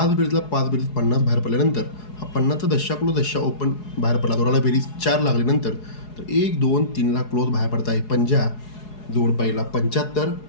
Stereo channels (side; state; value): right; late; 4.8 ms